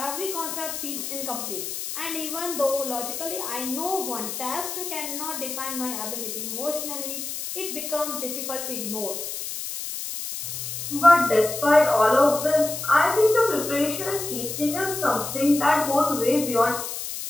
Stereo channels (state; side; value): noise; left; hiss, 6 dB below the sound